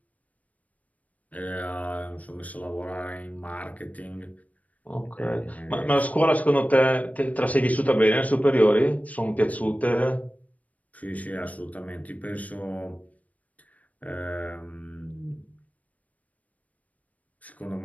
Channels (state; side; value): late; right; 0.070 ms